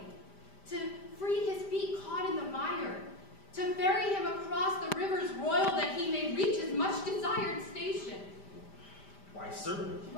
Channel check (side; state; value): right; late; 5.0 ms